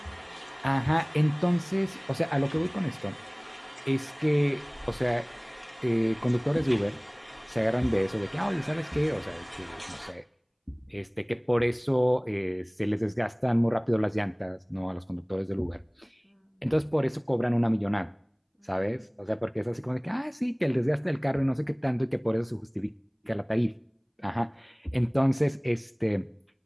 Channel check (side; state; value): both; identical; correlation 1.00